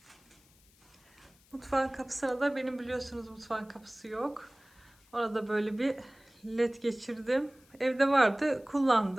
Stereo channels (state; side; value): noise; left; hiss, 30 dB below the sound